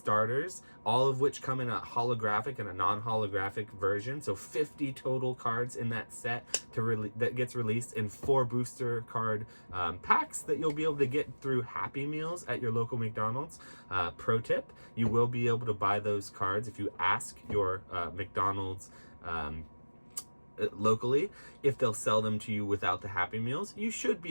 all of which come in a holographic and a non-holographic version. So 50 total cards in that set that gets released in 4 booster card packs that you'll be able to get through Happy Meals at your local McDonald's. Pro tip, you will be able to buy those cards if you ask your McDonald's locally if they'll sell them to you without the Happy Meals. You should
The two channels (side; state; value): both; inverted; correlation -1.00